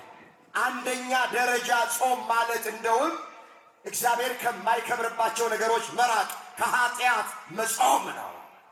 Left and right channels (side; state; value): both; identical; correlation 1.00